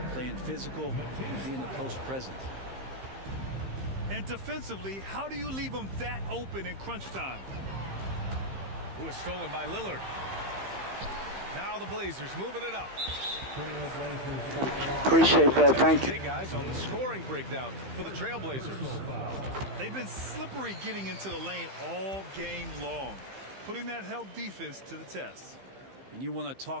playing physical and being a post presence. And defensively, how do you leave him that open in crunch time? Who is stolen by Lillard. Now the Blazers moving it up. Appreciate that. Thank you. Hey, guys, on the scoring breakdown for the Trailblazers. They've been slippery getting into the lane all game long, putting that help defense to the test. And you want to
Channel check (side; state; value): left; late; 15 ms